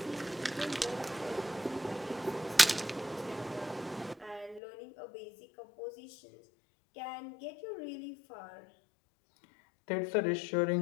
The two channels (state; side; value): drops out; right; at 4.6 s